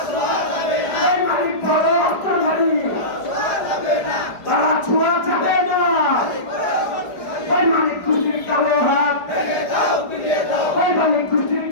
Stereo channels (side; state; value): right; late; 4.9 ms